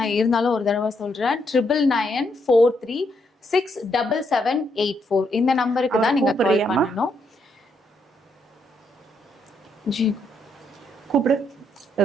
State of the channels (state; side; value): normal; both; correlation 0.76